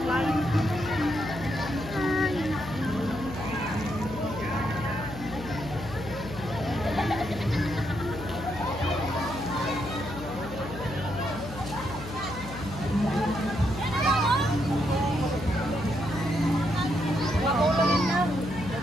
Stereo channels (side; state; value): left; noise; hum, 12 dB below the sound